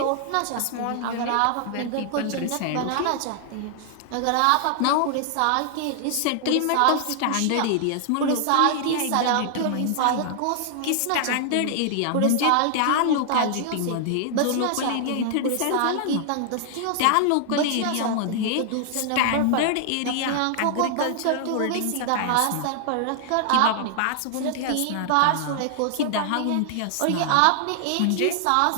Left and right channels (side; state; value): both; different; correlation 0.00